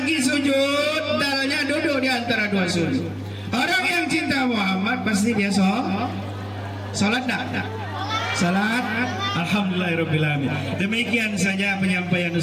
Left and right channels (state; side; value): identical; both; correlation 1.00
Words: sujud, dalnya duduk di antara dua sujud. Orang yang cinta Muhammad pasti dia sholat tak? Salat. Alhamdulillahirrahmanirrahim. Demikian saja penyampaian